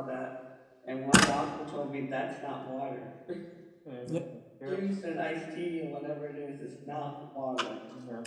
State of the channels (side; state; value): both; identical; correlation 1.00